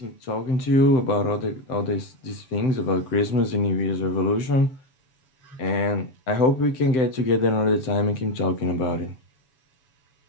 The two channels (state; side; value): late; right; 7.8 ms